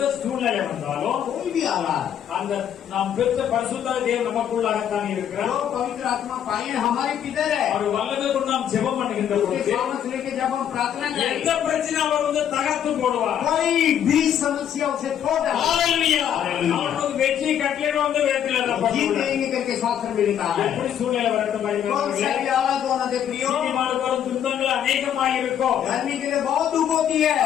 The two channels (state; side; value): quieter; right; 9.5 dB